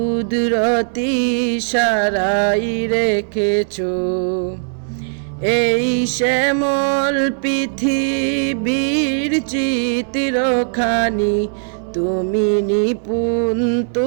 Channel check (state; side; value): silent; left; 63 dB below the other